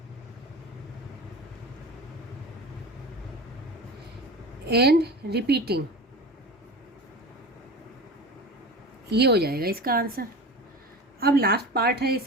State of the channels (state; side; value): normal; both; correlation 0.32